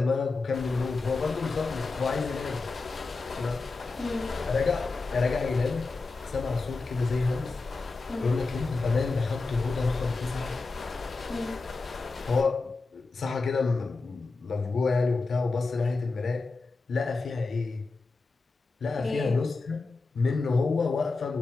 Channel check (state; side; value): quieter; right; 3.8 dB